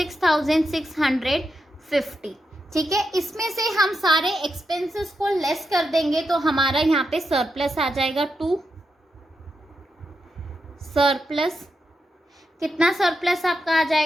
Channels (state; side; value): normal; both; correlation 0.86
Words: ठीक है, इसमें से हम सारे एक्सपेंसेस को लेस कर देंगे तो हमारा यहाँ पे सरप्लस आ जाएगा 2। सरप्लस कितना, सरप्लस आपका आ